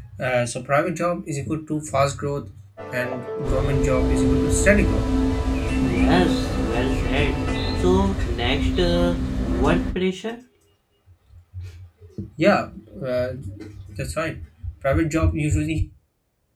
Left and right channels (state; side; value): identical; both; correlation 1.00